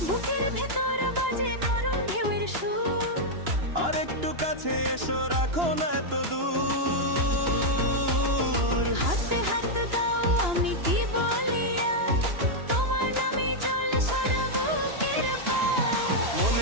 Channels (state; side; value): late; left; 2.9 ms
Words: বুকের ভেতর বাজে নরম ঢেউয়ের সুর, আর একটু কাছে এসো, রাখো না এত দূর। হাতে হাত দাও, আমি কি বলি আর, তোমার নামে জল সারা বুকের পার।